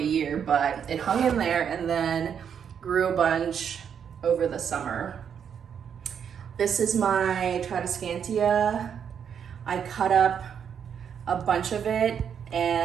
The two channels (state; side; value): quieter; left; 7.8 dB